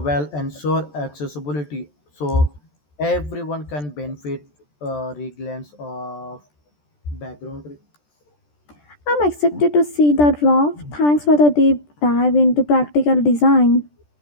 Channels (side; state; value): right; late; 14 ms